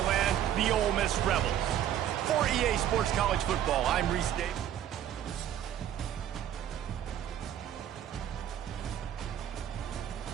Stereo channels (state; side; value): quieter; left; 10.6 dB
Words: land, the Ole Miss Rebels. For EA Sports College Football, I'm Reese Davis.